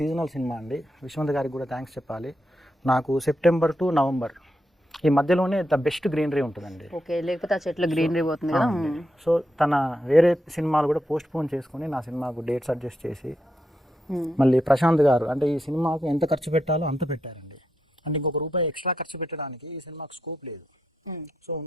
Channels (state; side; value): normal; both; correlation 0.84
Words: సినిమా అండి. విశ్వంత్ గారికి కూడా థ్యాంక్స్ చెప్పాలి. నాకు సెప్టెంబర్ టు నవంబర్ ఈ మధ్యలోనే ద బెస్ట్ గ్రీనరీ ఉంటుందండి. ఓకే, లేకపోతే ఆ చెట్ల గ్రీనరీ పోతుంది కదా. సో తన వేరే సినిమాలు కూడా పోస్ట్ పోన్ చేసుకొని నా సినిమాకు డేట్స్ అడ్జస్ట్ చేసి మళ్ళీ ప్రశాంత్ గారు అంటే ఈ సినిమాకు ఎంత ఖర్చు పెట్టాలో అంత పెట్టారండి. అంటే ఇంకొక రూపాయి ఎక్స్ట్రా ఖర్చు పెట్టడానికి ఈ సినిమాకు స్కోప్ లేదు. సో